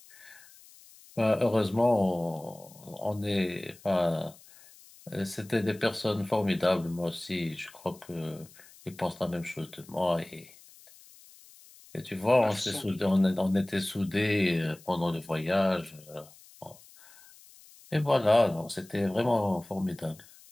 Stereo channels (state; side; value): noise; left; hiss, 23 dB below the sound